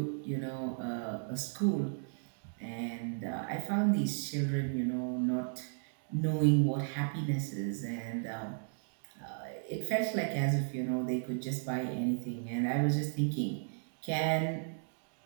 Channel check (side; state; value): left; silent; digital silence